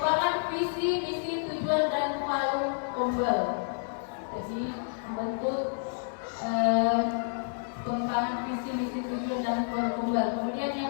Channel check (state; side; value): silent; right; digital silence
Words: visi, misi, tujuan dan malu Gombel. Jadi membentuk pengembangan visi, misi, tujuan dan malu Gombel. Kemudian